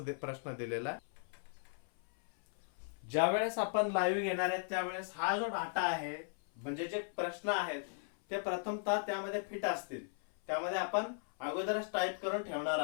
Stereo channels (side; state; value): right; silent; 53 dB below the other